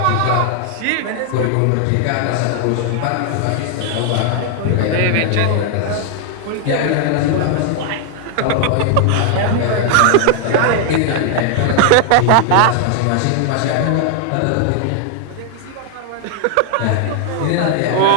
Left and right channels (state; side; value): different; both; correlation 0.00